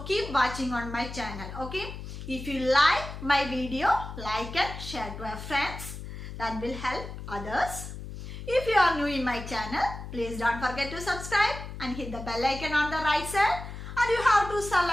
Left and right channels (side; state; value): left; noise; hum, 10 dB below the sound